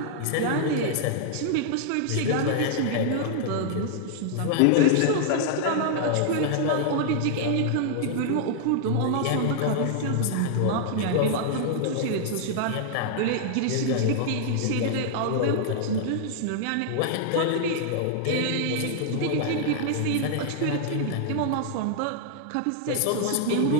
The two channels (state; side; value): different; both; correlation -0.01